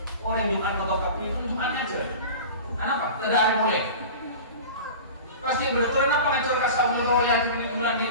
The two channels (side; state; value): both; inverted; correlation -0.35